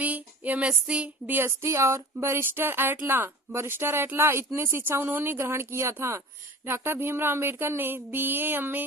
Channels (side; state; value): both; normal; correlation 0.38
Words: MSc, DST और बरिस्टर एट लॉ इतने शिक्षा उन्होंने ग्रहण किया था। डॉक्टर भीमराव अंबेडकर ने BA,